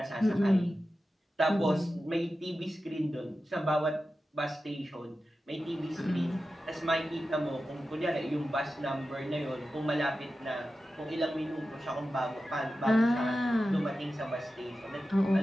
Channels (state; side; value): normal; both; correlation 0.93